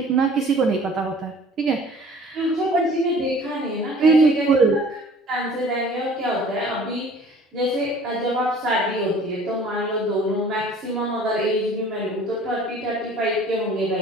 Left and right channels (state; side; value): normal; both; correlation 0.50